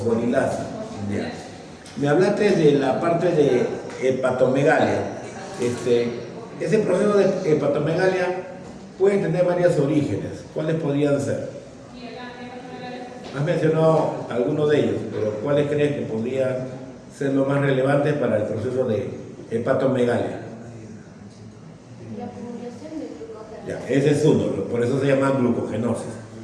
¿Ya? Me hablaste de la parte de hepatomegalia. Ese proceso de hepatomegalia puede tener varios orígenes. ¿Cuáles podrían ser? Has mencionado algunos de ellos, pero ¿cuáles crees que podrían ser los más relevantes para el proceso de hepatomegalia? La acumulación de glucógeno. Ya, ese es uno, por eso se llama glucogenosis.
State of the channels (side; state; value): both; identical; correlation 1.00